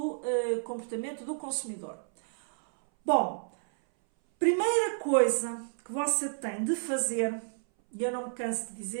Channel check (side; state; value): left; silent; 57 dB below the other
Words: comportamento do consumidor. Bom, primeira coisa que você tem de fazer, e eu não me canso de